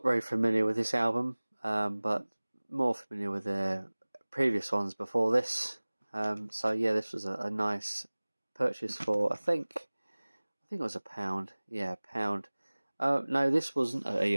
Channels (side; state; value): both; inverted; correlation -1.00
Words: very familiar with this album, but more familiar with their previous ones before this. So yeah, this was a nice purchase for, I think it was £1. Yeah, £1. No, this wasn't